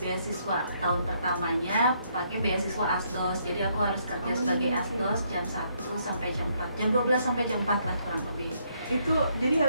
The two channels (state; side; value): inverted; both; correlation -0.72